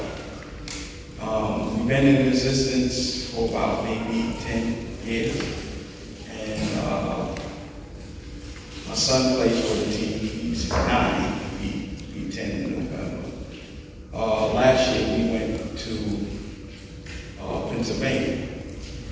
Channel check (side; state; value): both; identical; correlation 1.00